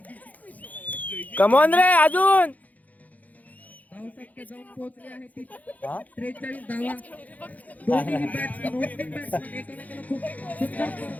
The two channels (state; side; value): late; right; 0.077 ms